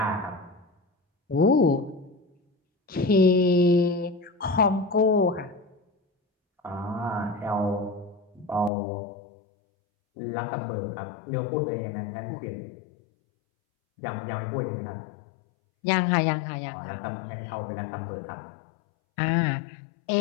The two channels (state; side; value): drops out; right; at 8.7 s